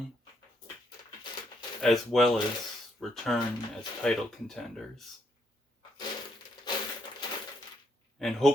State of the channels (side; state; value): both; normal; correlation 0.75